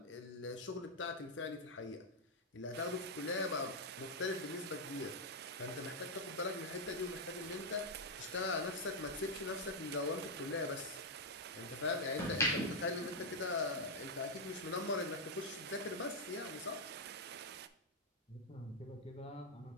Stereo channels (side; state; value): both; normal; correlation -0.01